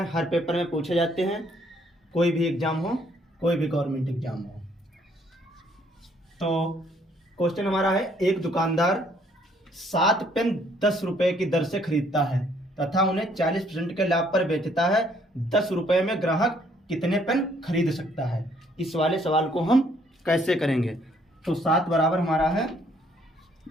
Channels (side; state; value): both; normal; correlation 0.65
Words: हर पेपर में पूछे जाते हैं, कोई भी एग्जाम हो, कोई भी गवर्नमेंट एग्जाम हो। तो क्वेश्चन हमारा है, एक दुकानदार 7 पेन 10 रुपए की दर से खरीदता है तथा उन्हें 40% के लाभ पर बेचता है। 10 रुपए में ग्राहक कितने पेन खरीद सकता है? इस वाले सवाल को हम कैसे करेंगे? तो 7 बराबर हमारा है